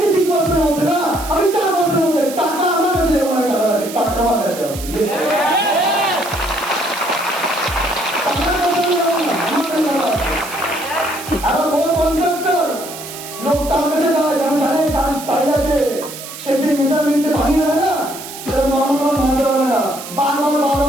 মধ্যে না, আমি 4% মধ্যে। টাকা আমার কাছে যেমন টাকা আছে, টাকা আমার কাছে আছে। আবার বড় কন্ট্রাক্টর লোক তার কাছে যায়, যেমন জানে তার তাই আছে, সে যে মেজারমেন্টে ভাঙি হয় না, সেটা নর্মাল মানতে পারবে না, বারবার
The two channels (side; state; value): right; noise; hiss, 12 dB below the sound